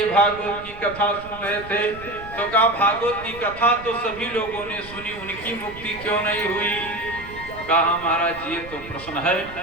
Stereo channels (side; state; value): right; noise; rumble, 16 dB below the sound